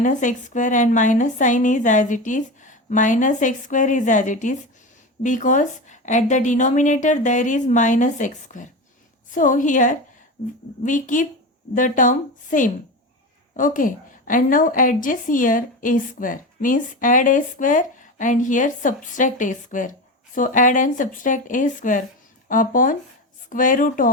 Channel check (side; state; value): both; normal; correlation 0.23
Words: x square, and minus sign is as it is, minus x square is as it is, because at the denominator there is minus x square. So here we keep the term same, okay, and now adjust here a square, means add a square and here subtract a square. So add and subtract a square upon square root